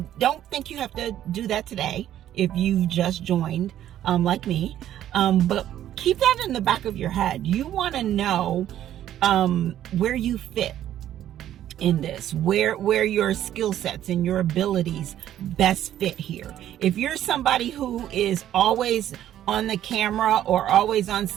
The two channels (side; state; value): left; quieter; 11.8 dB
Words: don't think you have to do that today if you've just joined, like me. But keep that in the back of your head. You want to know where you fit in this, where your skill sets and your abilities best fit here. If you're somebody who is always on the camera, or always on